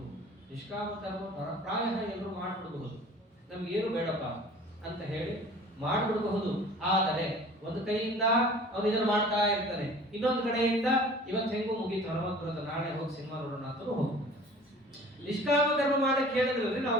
ನಿಷ್ಕಾಮ ಕರ್ಮ ಪ್ರಾಯ ಎಲ್ಲರೂ ಮಾಡ್ಬಿಡಬಹುದು, ನಮ್ಗೇನು ಬೇಡಪ್ಪ ಅಂತ ಹೇಳಿ ಮಾಡ್ಬಿಡಬಹುದು. ಆದರೆ ಒಂದು ಕೈಯಿಂದ ಅವನು ಇದನ್ನು ಮಾಡ್ತಾ ಇರ್ತಾನೆ, ಇನ್ನೊಂದು ಕಡೆಯಿಂದ ಇವತ್ತು ಹೆಂಗೂ ಮುಗೀತು, ಹನುಮಂತ ನಾಳೆ ಹೋಗಿ ಸಿನಿಮಾ ನೋಡೋಣ ಅಂತ ಹೋಗ್ಬೋದು. ನಿಷ್ಕಾಮ ಕರ್ಮ ಮಾಡಕ್ಕೆ ಹೇಳಿದ್ರಲ್ಲಿ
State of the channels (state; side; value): normal; both; correlation 0.46